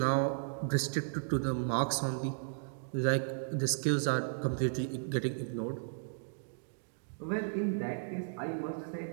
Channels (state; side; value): silent; left; digital silence